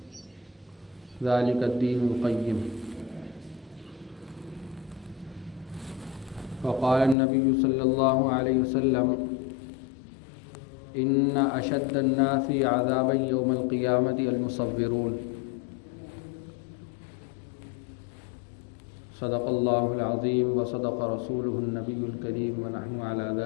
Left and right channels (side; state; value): right; drops out; at 7.2 s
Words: ذلک الدین القیم۔ وقال النبی صلی اللہ علیہ وسلم ان اشد الناس عذابا یوم القیامۃ المصورون۔ صدق اللہ العظیم وصدق رسولہ النبی الکریم ونحن علی